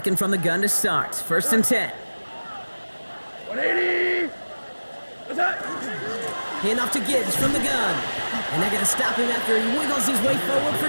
from the gun to start. 1st and 10. 180. What's that? Hand off to Gibbs from the gun. And they're going to stop him after he wiggles his way forward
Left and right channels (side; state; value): both; inverted; correlation -1.00